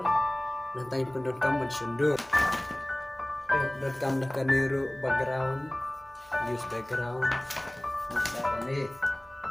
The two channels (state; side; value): noise; right; hum, 29 dB below the sound